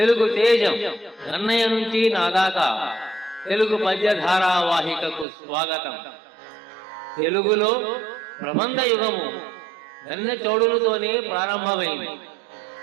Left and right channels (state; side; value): drops out; left; at 5.2 s